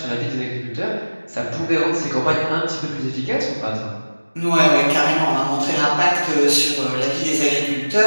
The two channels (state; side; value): inverted; both; correlation -1.00